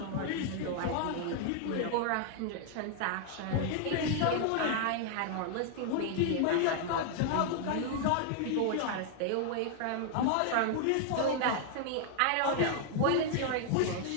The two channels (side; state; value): both; different; correlation 0.00